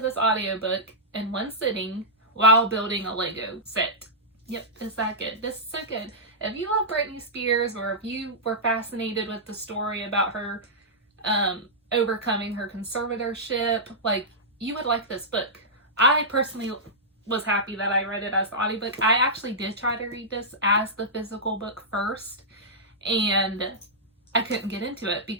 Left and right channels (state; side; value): normal; both; correlation -0.13